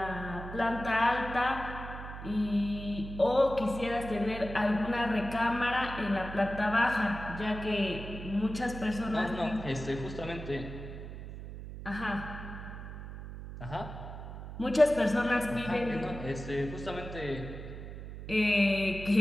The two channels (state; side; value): noise; right; hum, 10 dB below the sound